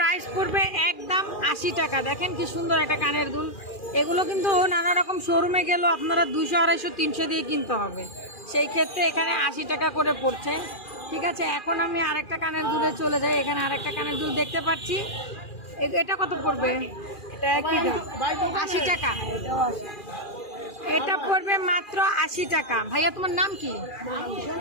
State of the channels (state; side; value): late; right; 2.4 ms